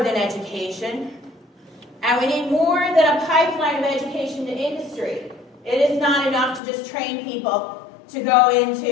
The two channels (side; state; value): right; drops out; at 6.6 s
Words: education, and we need more than a pipeline of education to industry. It is not enough to just train people to go